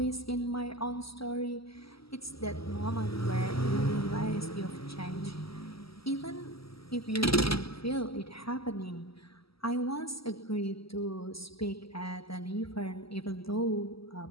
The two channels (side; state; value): right; late; 0.75 ms